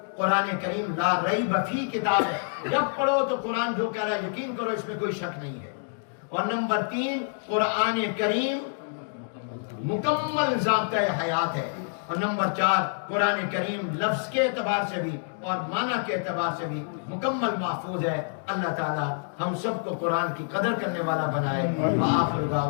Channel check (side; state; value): right; silent; digital silence